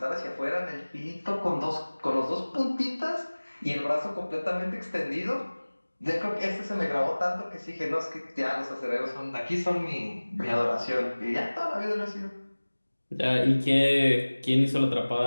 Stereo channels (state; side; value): inverted; both; correlation -1.00